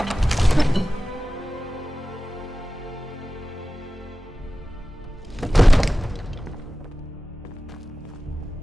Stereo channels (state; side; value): normal; both; correlation 0.96